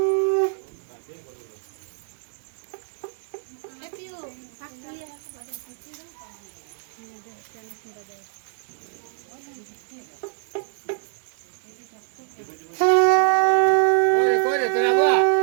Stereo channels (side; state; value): left; silent; 60 dB below the other